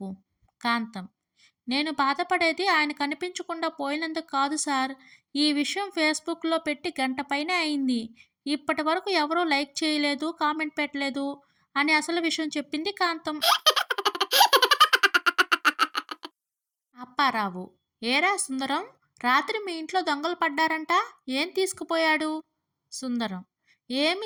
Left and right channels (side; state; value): both; identical; correlation 1.00